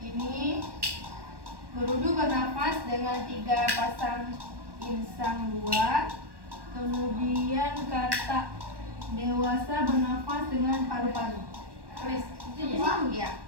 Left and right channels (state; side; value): late; left; 1.1 ms